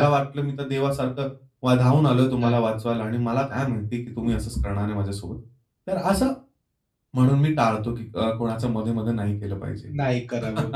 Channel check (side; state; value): both; identical; correlation 1.00